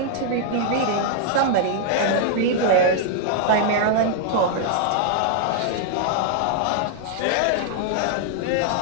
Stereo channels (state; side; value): different; both; correlation 0.00